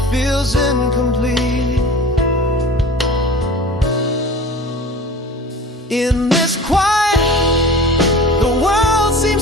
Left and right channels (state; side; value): normal; both; correlation 0.40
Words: feels incomplete. In this quiet, the world